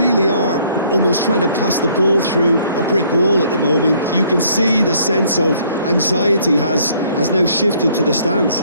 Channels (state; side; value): inverted; both; correlation -0.62